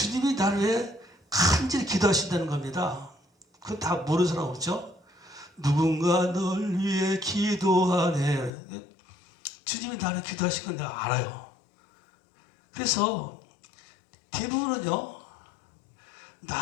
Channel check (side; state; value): right; drops out; at 8.5 s